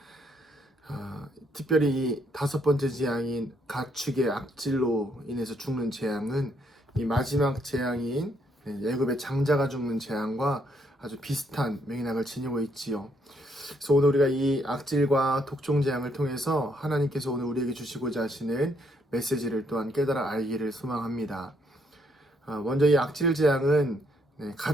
특별히 이 다섯 번째 재앙인 가축의 악질로 인해서 죽는 재앙은 이 마지막 재앙인 애굽의 장자가 죽는 재앙과 아주 비슷한 맥락을 지니고 있지요. 그래서 오늘 우리가 이 악질과 독종 재앙을 통해서 하나님께서 오늘 우리에게 주시고자 하시는 메시지를 또한 깨달아 알기를 소망합니다. 먼저 이 악질 재앙은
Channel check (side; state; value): both; normal; correlation 0.72